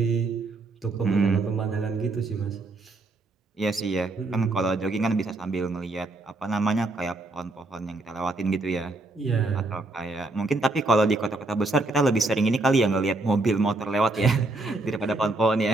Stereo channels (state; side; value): quieter; left; 3.0 dB